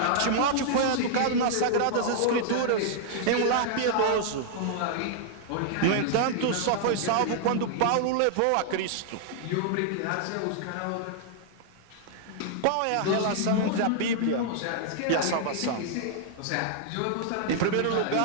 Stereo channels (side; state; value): both; different; correlation -0.01